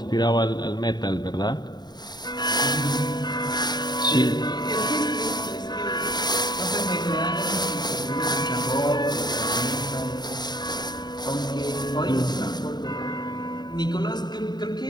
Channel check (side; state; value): right; late; 0.20 ms